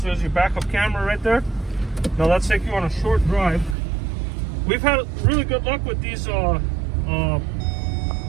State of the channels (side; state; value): left; drops out; at 3.8 s